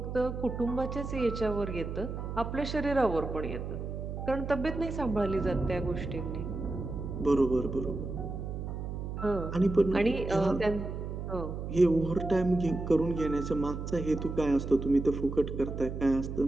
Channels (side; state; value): right; noise; hum, 6 dB below the sound